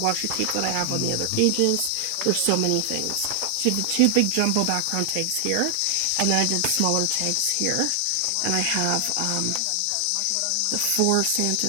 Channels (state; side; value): different; both; correlation 0.00